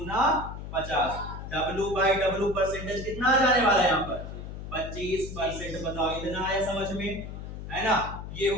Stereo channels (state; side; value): noise; left; hum, 9 dB below the sound